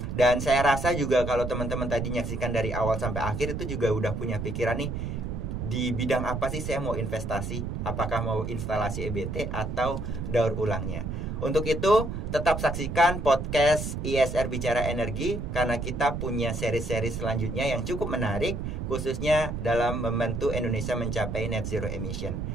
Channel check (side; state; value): right; noise; rumble, 4 dB below the sound